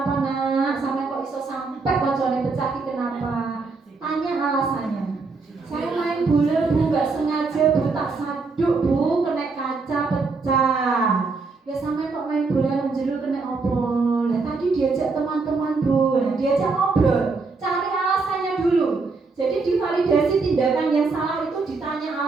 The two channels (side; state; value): left; quieter; 4.2 dB